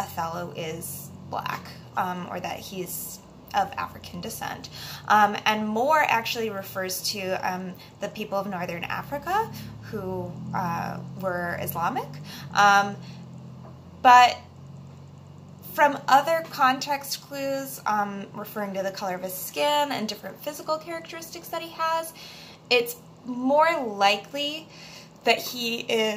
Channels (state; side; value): identical; both; correlation 1.00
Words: is black, or that he's of African descent. And Moor actually refers to the people of Northern Africa who were Islamic. But from other context clues, referring to the color of his skin and different physical characteristics that he has, it's more likely that he